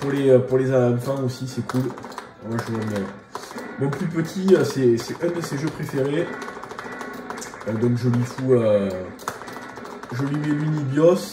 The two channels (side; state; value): both; identical; correlation 1.00